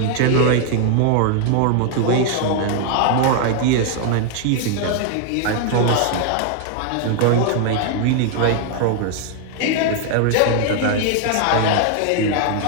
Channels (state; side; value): different; both; correlation 0.00